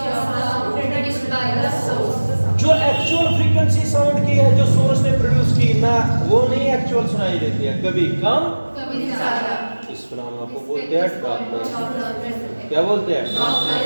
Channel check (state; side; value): inverted; both; correlation -1.00